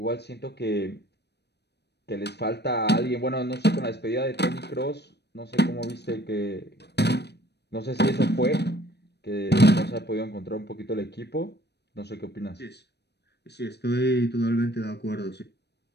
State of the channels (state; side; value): late; right; 0.49 ms